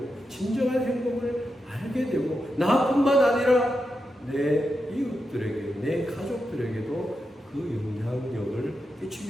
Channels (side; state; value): both; normal; correlation 0.87